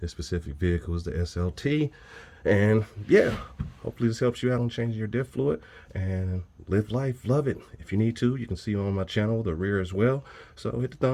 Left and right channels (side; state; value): both; identical; correlation 1.00